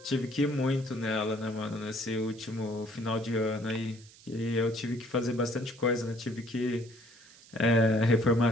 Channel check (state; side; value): noise; right; hiss, 23 dB below the sound